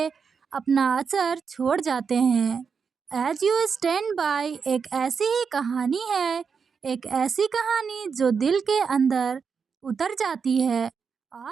अपना असर छोड़ जाते हैं। एज यू स्टैंड बाय एक ऐसी ही कहानी है, एक ऐसी कहानी जो दिल के अंदर उतर जाती है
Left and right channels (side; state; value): left; quieter; 5.9 dB